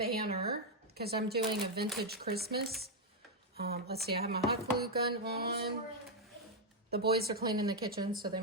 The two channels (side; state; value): both; normal; correlation 0.01